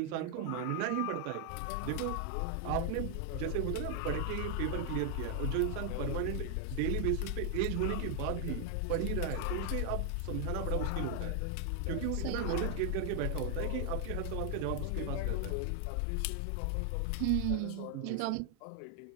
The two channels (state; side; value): different; both; correlation 0.00